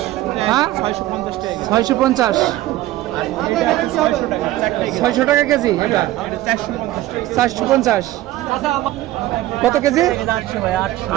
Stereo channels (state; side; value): quieter; left; 15.8 dB